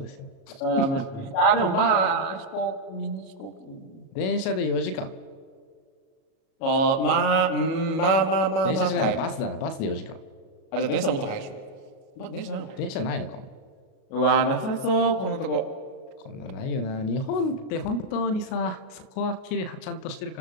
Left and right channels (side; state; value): right; late; 37 ms